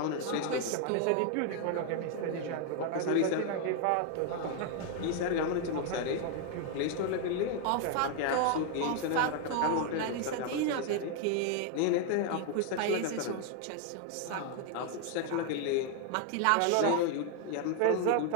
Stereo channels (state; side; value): different; both; correlation 0.00